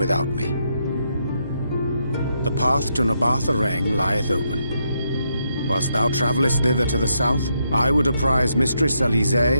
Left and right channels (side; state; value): both; inverted; correlation -0.79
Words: me. The path to Nabartha lieth open. Whilst thou travellest thither to the south, I would apprise Mistress